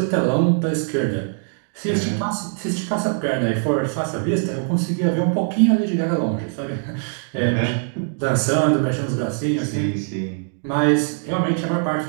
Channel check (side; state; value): left; silent; 55 dB below the other